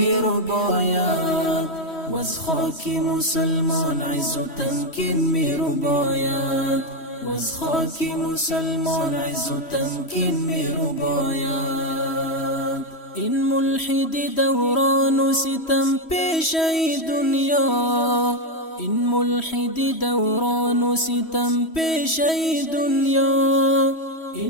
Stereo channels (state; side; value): late; right; 3.1 ms